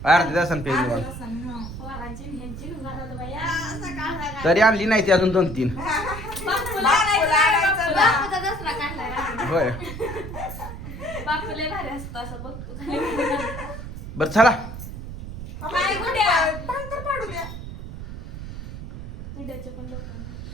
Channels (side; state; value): right; noise; rumble, 9 dB below the sound